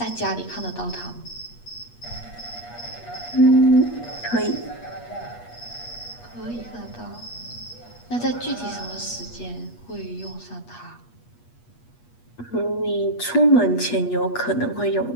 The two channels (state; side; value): late; right; 8.4 ms